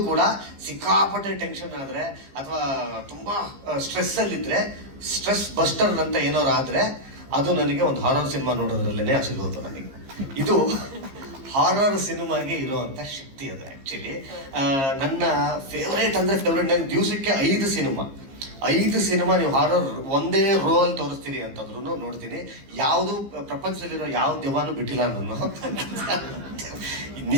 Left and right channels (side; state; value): left; late; 15 ms